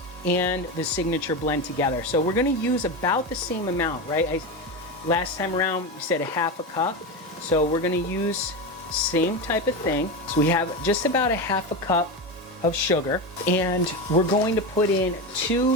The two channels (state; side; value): normal; both; correlation 0.18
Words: and the signature blend together. So we're gonna use about the same amount, right? Last time around, we said a half a cup. So we're gonna use same type of thing. So we have just about a half a cup of sugar, and we're going to put in